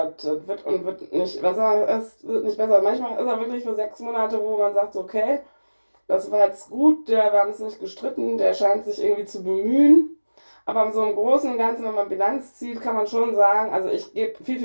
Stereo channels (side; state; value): both; inverted; correlation -1.00